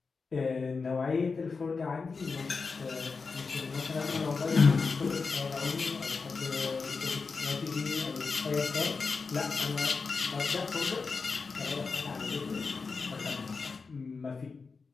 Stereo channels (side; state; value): right; quieter; 4.7 dB